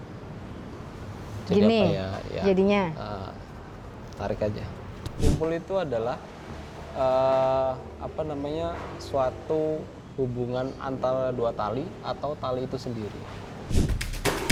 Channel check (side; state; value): both; identical; correlation 1.00